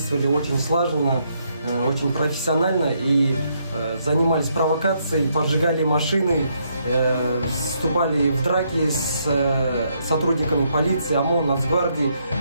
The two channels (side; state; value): both; inverted; correlation -0.75